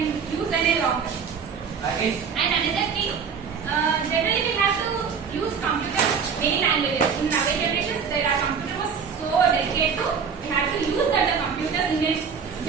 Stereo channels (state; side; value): quieter; left; 6.3 dB